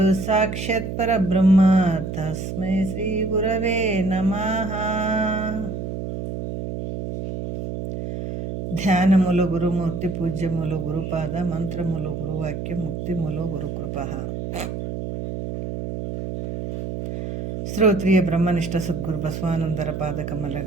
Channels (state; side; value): noise; right; hum, 5 dB below the sound